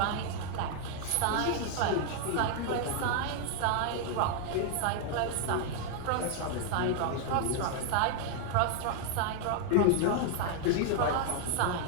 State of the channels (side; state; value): both; different; correlation 0.00